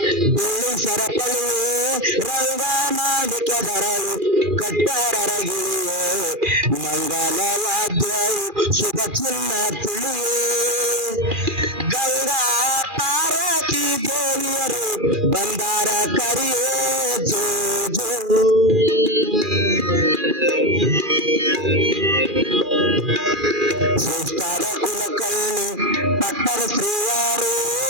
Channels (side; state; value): left; late; 2.4 ms